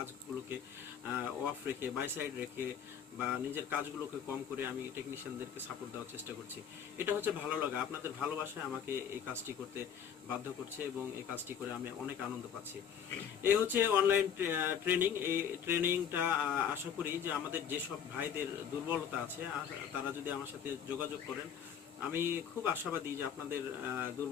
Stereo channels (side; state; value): right; quieter; 8.1 dB